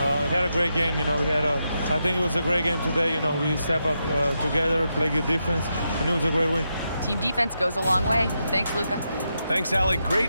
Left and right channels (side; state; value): both; inverted; correlation -0.85